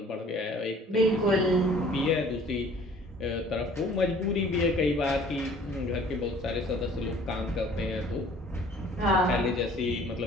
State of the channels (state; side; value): normal; both; correlation 0.53